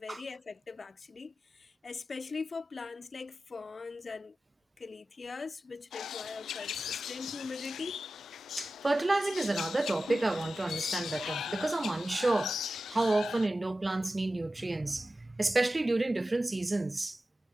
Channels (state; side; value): normal; both; correlation 0.94